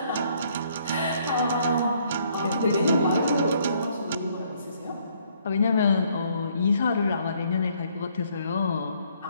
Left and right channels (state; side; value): inverted; both; correlation -0.66